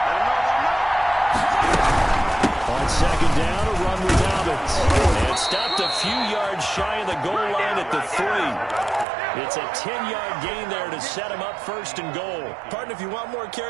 On second down, a run with Dobbins. And stopped a few yards shy of the goal line at the 3. It's a 10-yard gain there to set him up first and goal. Partner, if you want more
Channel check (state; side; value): drops out; left; at 9.1 s